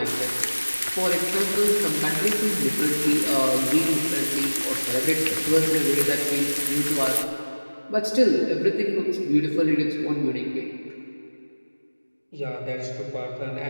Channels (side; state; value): both; inverted; correlation -1.00